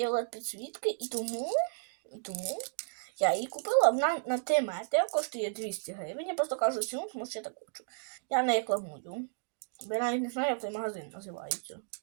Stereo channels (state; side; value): silent; left; digital silence